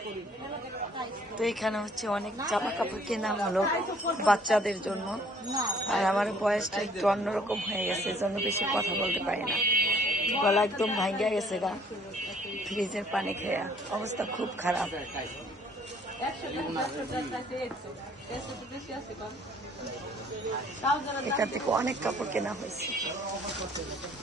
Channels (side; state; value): both; normal; correlation 0.59